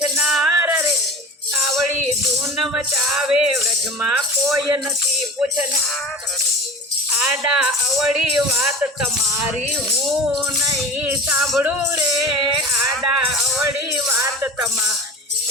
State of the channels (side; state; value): both; normal; correlation 0.36